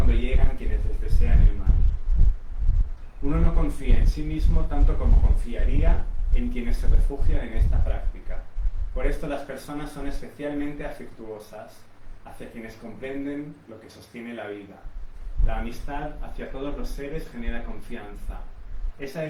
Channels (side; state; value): both; identical; correlation 1.00